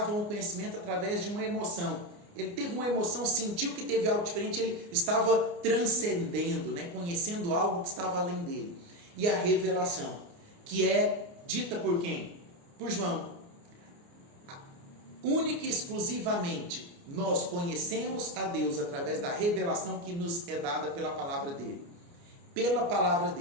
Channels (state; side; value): late; left; 29 ms